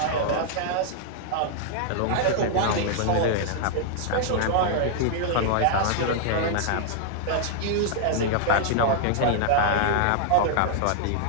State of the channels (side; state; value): both; different; correlation -0.01